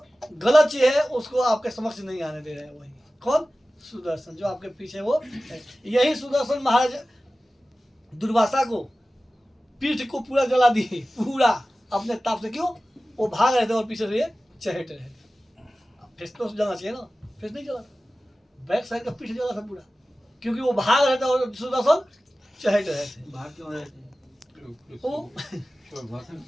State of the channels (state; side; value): normal; both; correlation 0.96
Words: गलत चीज है उसको आपके समक्ष नहीं आने दे रहे हैं। वही कौन, सुदर्शन जो आपके पीछे वो है। यही सुदर्शन महाराज दुर्वासा को पीठ को पूरा जला दिए, पूरा अपने ताप से। क्यों, वो भाग रहे थे और पीछे से ये चहट रहे थे। फेस तो जलना चाहिए ना, फेस नहीं जला, बैक साइड का पीठ जला था पूरा, क्योंकि वो भाग रहे थे और सुदर्शन चहट रहे थे। भाग क्यों रहे थे?